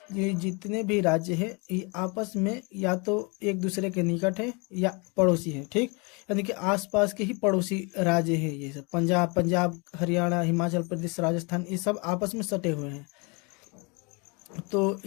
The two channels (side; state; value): right; quieter; 30.4 dB